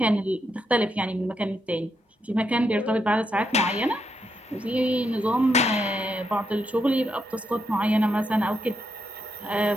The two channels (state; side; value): normal; both; correlation 0.80